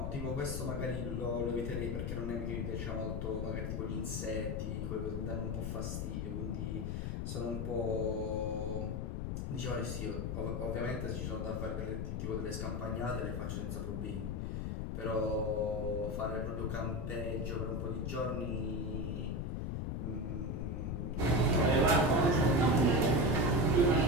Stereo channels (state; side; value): noise; left; rumble, 2 dB below the sound